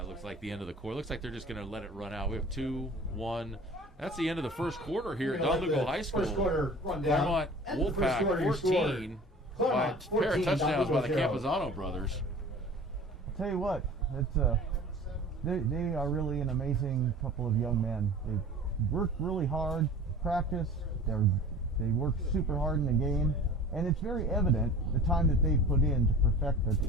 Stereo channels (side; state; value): both; normal; correlation 0.42